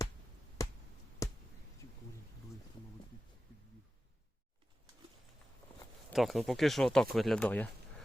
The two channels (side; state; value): both; normal; correlation 0.94